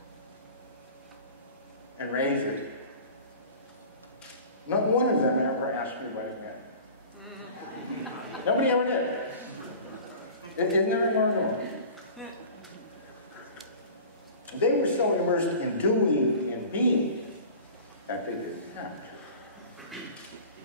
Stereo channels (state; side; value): inverted; both; correlation -0.40